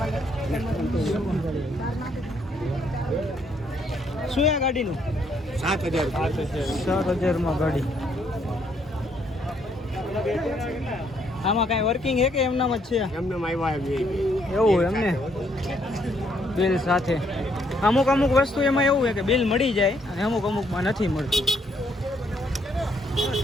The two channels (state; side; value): normal; both; correlation 0.70